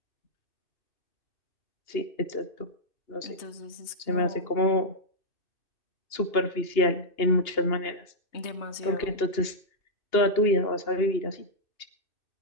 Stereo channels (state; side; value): late; right; 2.8 ms